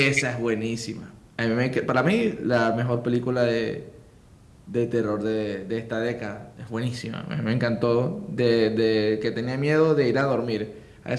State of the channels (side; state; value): both; identical; correlation 1.00